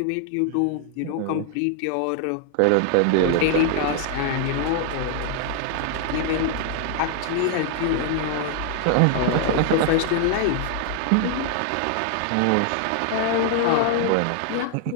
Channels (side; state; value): both; different; correlation 0.00